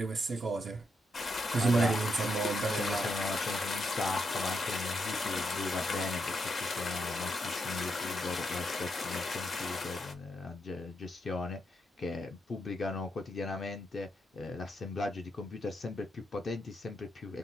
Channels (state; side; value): normal; both; correlation 0.81